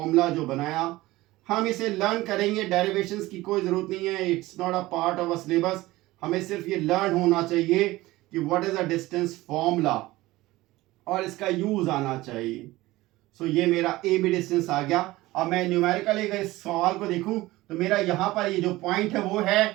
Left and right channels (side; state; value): left; quieter; 18.5 dB